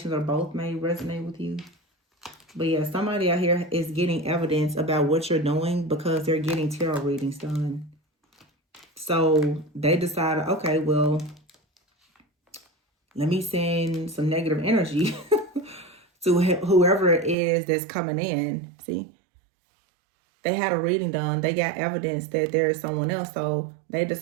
or both may resonate with you. But yeah, somebody out here is getting evidence about what you're doing because they're getting tarot readings done. So they decided, okay, well, let me send some negative energy to whoever it is that's coming in. See? They had a reading done. They got evidence that there is someone else. So they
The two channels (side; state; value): left; drops out; at 17.4 s